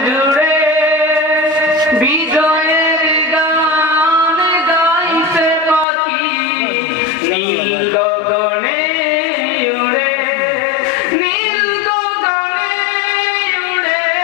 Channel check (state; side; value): drops out; right; at 5.9 s